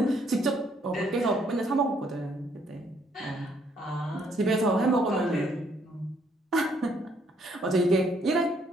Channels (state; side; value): normal; both; correlation 0.68